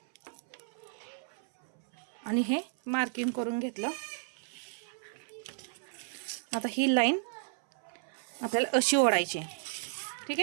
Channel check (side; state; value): left; silent; 56 dB below the other